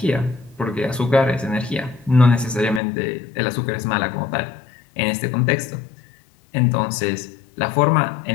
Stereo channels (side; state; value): right; drops out; at 2.8 s